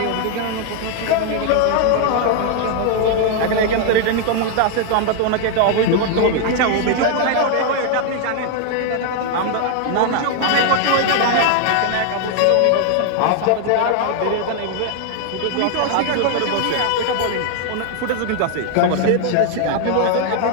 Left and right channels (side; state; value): both; different; correlation 0.00